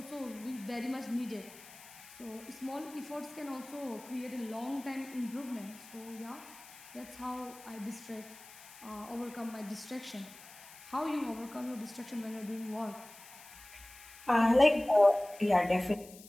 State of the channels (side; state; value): left; noise; hiss, 19 dB below the sound